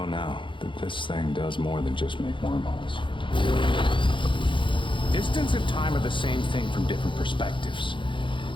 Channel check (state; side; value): late; right; 0.24 ms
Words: now that this thing does more than just make wormholes. Distance and time are the same thing from different perspectives.